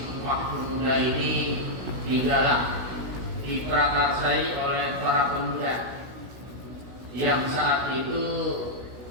Pemuda ini digalang, diprakarsai oleh para pemuda yang saat itu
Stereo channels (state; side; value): late; left; 16 ms